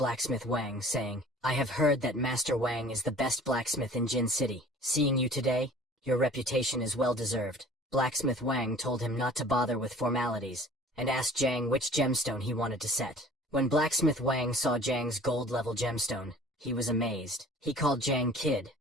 Wang, saying, "I have heard that Master Wang is the best blacksmith in Jin City. Seeing you today, your reputation is well deserved." Blacksmith Wang told him not to bother with formalities, and asked Jiang which gemstone he wanted to set. When Blacksmith Wang saw Jiang's gold-level gemstone, he was amazed. He called Jiang Kid,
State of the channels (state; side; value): normal; both; correlation 0.47